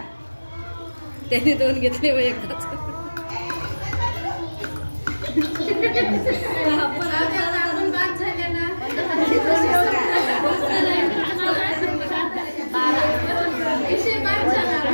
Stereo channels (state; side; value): inverted; both; correlation -1.00